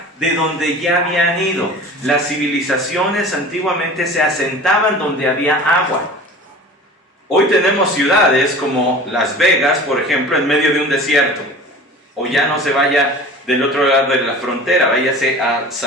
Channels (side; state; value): both; normal; correlation 0.39